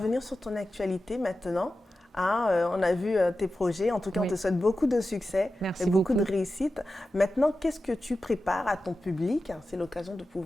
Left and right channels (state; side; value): normal; both; correlation 0.93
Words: sur ton actualité maintenant. On a vu tes projets. En tout cas, on te souhaite beaucoup de succès et beaucoup de réussite. Maintenant, qu'est-ce que tu prépares à ton public? C'est l'occasion de